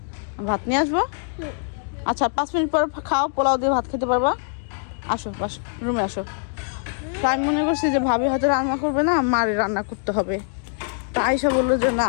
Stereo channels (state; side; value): silent; right; 63 dB below the other